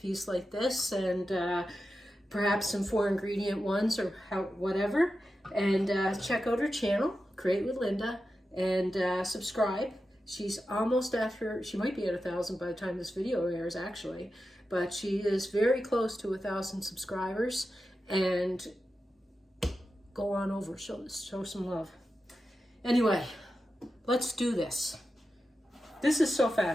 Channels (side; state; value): both; normal; correlation 0.91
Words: like this, and perhaps some 4 ingredient ones or whatever. And check out her channel, Create with Linda, and subscribe. She's almost after, she might be at 1,000 by the time this video airs actually, but she is very close to 1,000 subscribers. And go on over, show some love. Anyway, let's do this. This is so